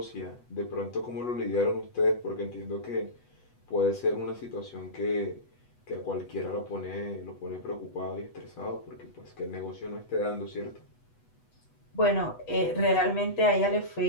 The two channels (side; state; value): right; late; 8.1 ms